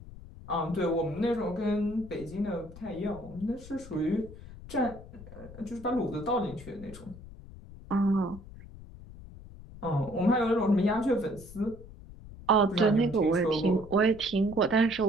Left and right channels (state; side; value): noise; left; rumble, 16 dB below the sound